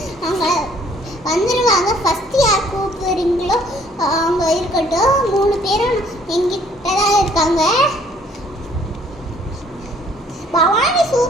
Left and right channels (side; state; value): both; normal; correlation 0.60